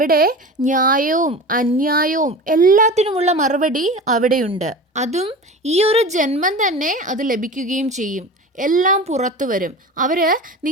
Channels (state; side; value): normal; both; correlation 0.33